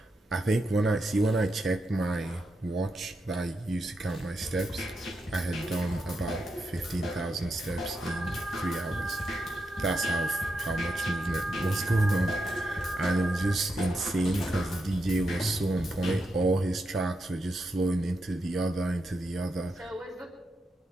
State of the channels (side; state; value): both; normal; correlation 0.85